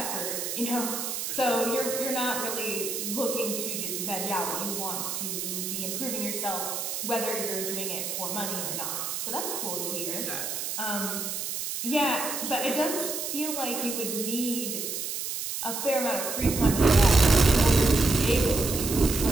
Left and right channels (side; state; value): right; noise; hiss, 4 dB below the sound